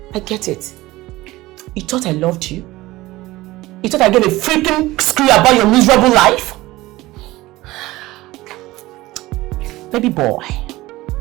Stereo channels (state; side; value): quieter; left; 18.5 dB